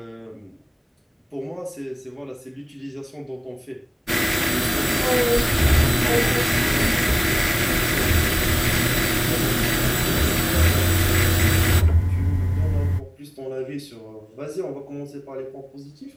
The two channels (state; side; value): identical; both; correlation 1.00